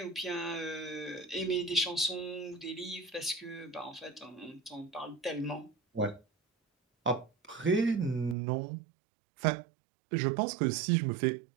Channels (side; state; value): left; drops out; at 8.3 s